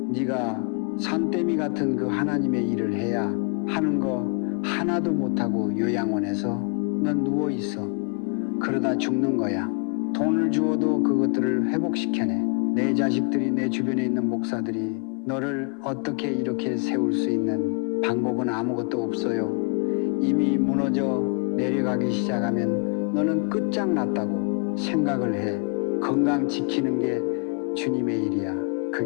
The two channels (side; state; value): right; quieter; 36.4 dB